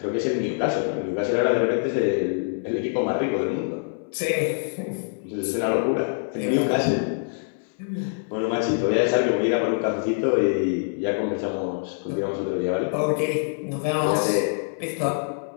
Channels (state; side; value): silent; right; 61 dB below the other